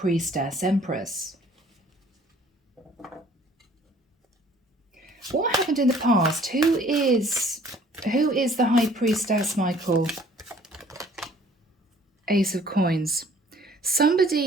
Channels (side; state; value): both; normal; correlation 0.56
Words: Empress. What happened in the past? Who is the High Priestess, Michael? Ace of Coins.